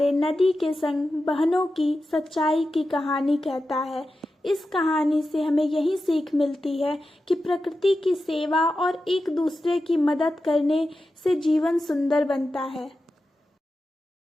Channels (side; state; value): both; normal; correlation 0.92